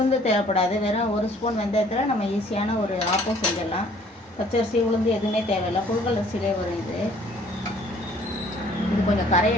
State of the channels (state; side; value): normal; both; correlation 0.57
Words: தேவைப்படாது. வெறும் 1 ஸ்பூன் வெந்தயத்தில் நம்ம ஈஸியான ஒரு ஆப்பம் செஞ்சிடலாம். பச்சரிசி உளுந்து எதுவுமே தேவையில்லை, புழுங்கல் அரிசியிலே வரும். இது கொஞ்சம்